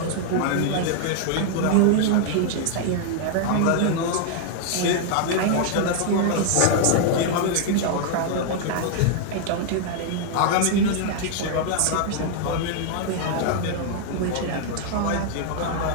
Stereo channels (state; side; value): different; both; correlation 0.00